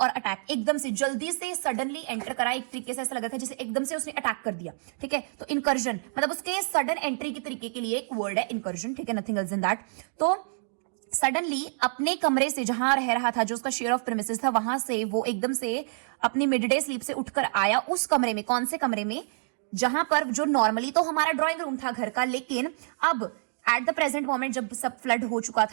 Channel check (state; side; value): silent; left; digital silence